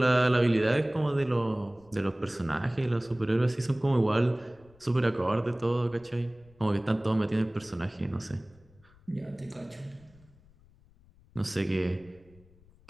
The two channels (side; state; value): left; noise; rumble, 28 dB below the sound